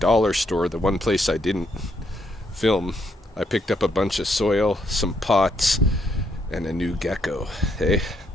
store, the one place I didn't film, I picked up a bunch of soil, some pots, and a new gecko. Hey,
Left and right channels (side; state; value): both; normal; correlation 0.75